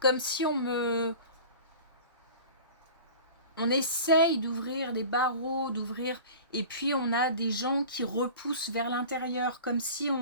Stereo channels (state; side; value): inverted; both; correlation -0.39